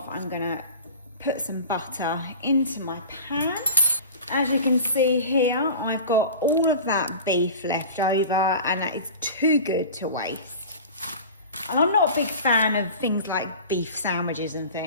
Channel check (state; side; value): inverted; both; correlation -0.37